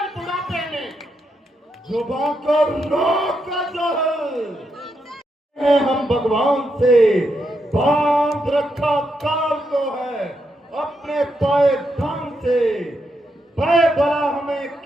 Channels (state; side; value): normal; both; correlation 0.82